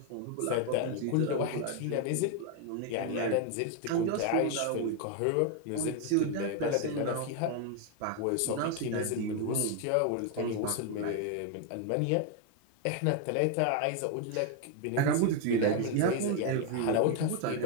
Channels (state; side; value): different; both; correlation 0.01